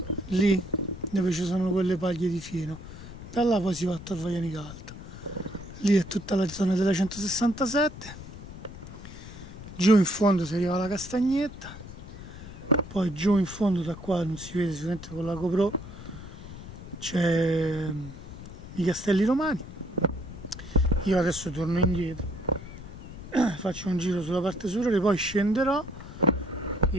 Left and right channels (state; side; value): noise; left; rumble, 13 dB below the sound